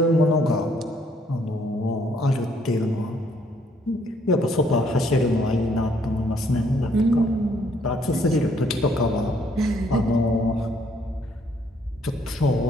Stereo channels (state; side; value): normal; both; correlation 0.66